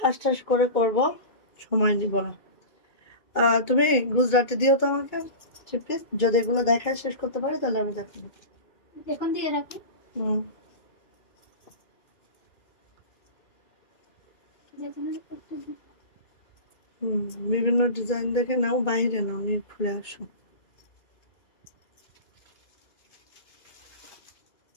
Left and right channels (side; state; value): right; late; 2.2 ms